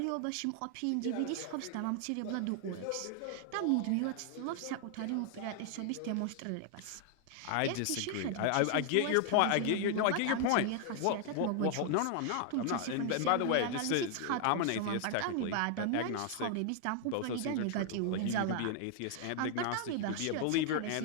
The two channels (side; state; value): both; different; correlation 0.00